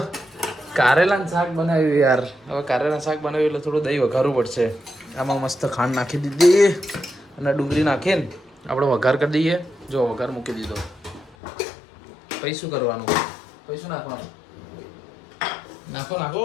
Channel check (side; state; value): right; drops out; at 11.4 s